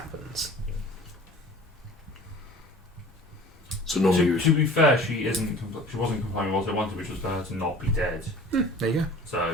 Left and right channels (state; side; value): normal; both; correlation 0.44